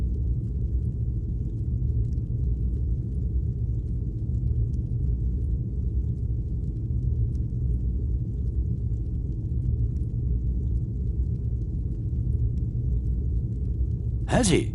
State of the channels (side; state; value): both; identical; correlation 1.00